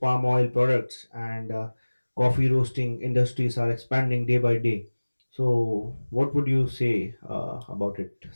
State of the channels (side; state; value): both; inverted; correlation -1.00